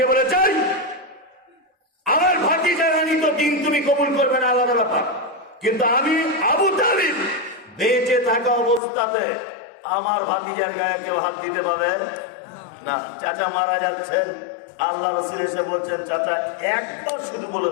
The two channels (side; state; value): right; drops out; at 8.8 s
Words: বলে চাই আমার ভাতিজা রানী তো দিন তুমি কবুল করবে না, আলাদা ব্যাপার, কিন্তু আমি আবু তালিব বেঁচে থাকা অবস্থাতে আমার ভাতিজার গায়ে কেউ হাত দিতে পারবে না। চাচা মারা যাচ্ছেন, আল্লাহ রাসূল এসে বলছেন চাচা একবার শুধু বলে